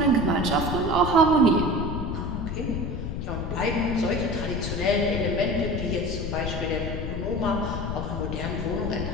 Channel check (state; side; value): noise; left; rumble, 4 dB below the sound